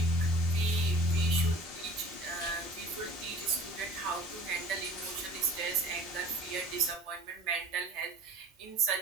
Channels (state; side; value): normal; both; correlation 0.45